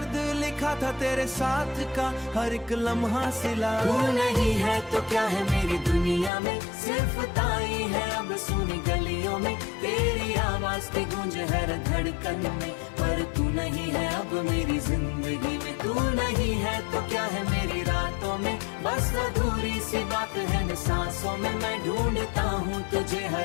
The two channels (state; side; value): drops out; right; at 6.3 s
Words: लिखा था तेरे साथ का हर एक लम्हा सिला। तू नहीं है तो क्या है मेरी दुनिया में, सिर्फ ताई है अब सुनी गलियों में, तेरी आवाज की गूंज हर धड़कन में। पर तू नहीं है अब मेरी जिंदगी में, तू नहीं है तो क्या है मेरी रातों में, बस अधूरी सी बात है न सांसों में। मैं ढूंढता हूँ तुझे